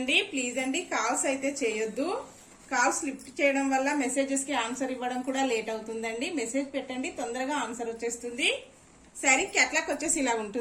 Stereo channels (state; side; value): identical; both; correlation 1.00